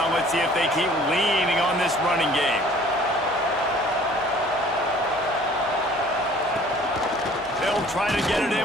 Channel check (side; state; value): left; noise; hum, 22 dB below the sound